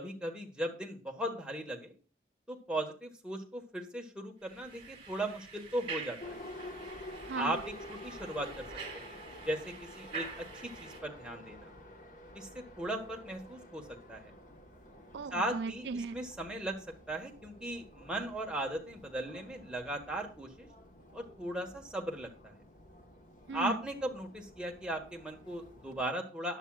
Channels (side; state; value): both; normal; correlation 0.54